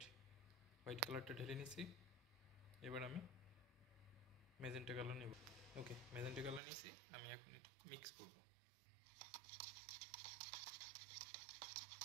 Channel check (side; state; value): left; drops out; at 6.6 s